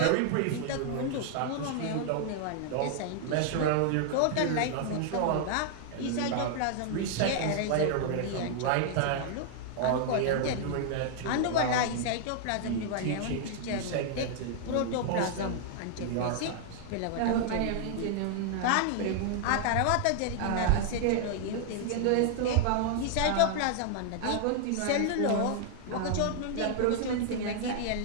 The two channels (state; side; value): different; both; correlation -0.01